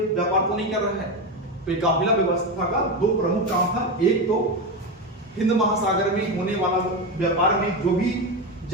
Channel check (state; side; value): normal; both; correlation 0.15